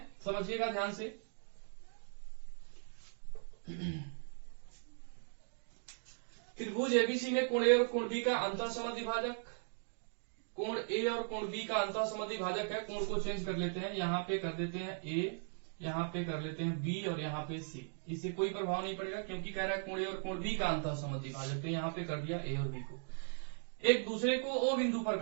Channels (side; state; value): left; silent; digital silence